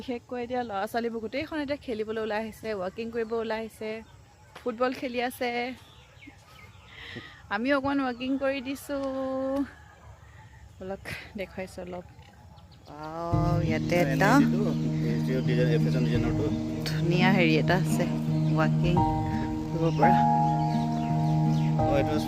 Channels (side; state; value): both; identical; correlation 1.00